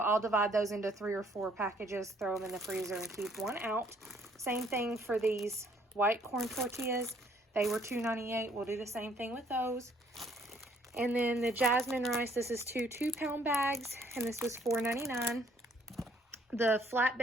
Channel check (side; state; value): both; normal; correlation 0.64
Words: divide those into 3 or 4 packages, throw them in the freezer, and keep one out. Same thing for these white corn tortillas. They were $2.98. We'll do the same thing with those. And then the jasmine rice, this is 2 2-pound bags, and this was $4.99. The